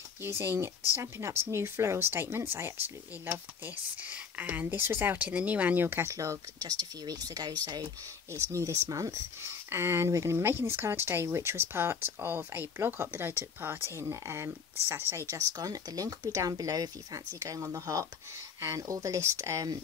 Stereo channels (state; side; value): quieter; right; 6.2 dB